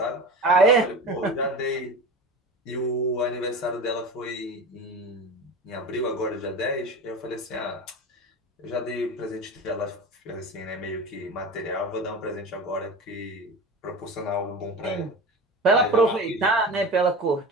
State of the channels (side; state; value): both; normal; correlation 0.30